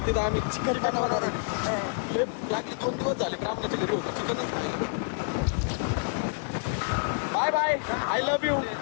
तिथं आम्ही चिकन बनवणार आहे. लय लागली 2 दिवस झाले ब्राह्मणाच्या घरी होतो चिकनच खायला. Bye bye. I love you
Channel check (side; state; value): right; silent; digital silence